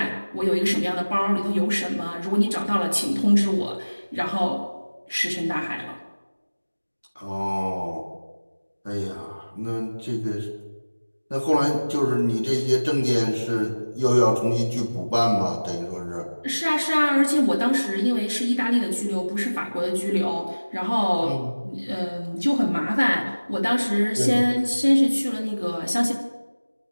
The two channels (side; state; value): both; inverted; correlation -1.00